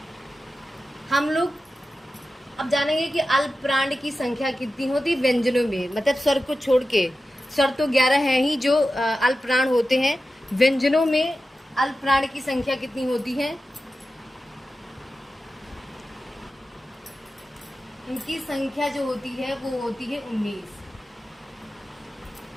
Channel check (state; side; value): normal; both; correlation 0.93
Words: हम लोग अब जानेंगे कि अल्प प्राण की संख्या कितनी होती है व्यंजनों में। मतलब स्वर को छोड़ के, स्वर तो 11 हैं ही जो अल्प प्राण होते हैं। व्यंजनों में अल्प प्राण की संख्या कितनी होती है? इनकी संख्या जो होती है वो होती है 19।